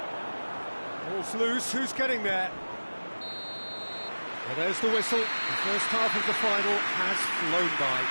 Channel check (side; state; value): both; inverted; correlation -1.00